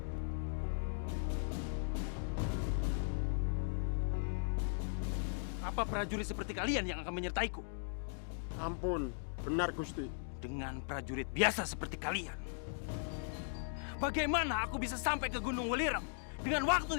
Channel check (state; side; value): silent; right; digital silence